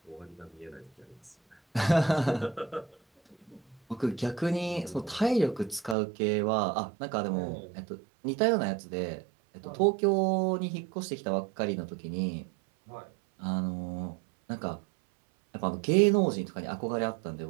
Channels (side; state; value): left; drops out; at 6.0 s